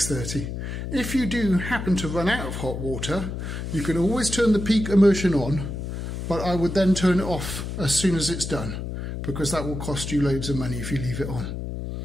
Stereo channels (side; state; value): left; noise; hum, 5 dB below the sound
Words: If you do happen to run out of hot water, you can always turn the peak immersion on, but I would then turn it off as soon as it's done, because that will cost you loads of money if you leave it on.